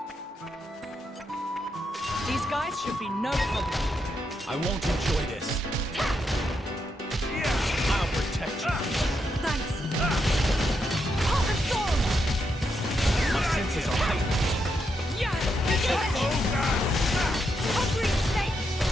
These guys should be no problem. I won't enjoy this. I'll protect you. Thanks. My senses are heightened. Hungry snake.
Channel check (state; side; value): normal; both; correlation 0.81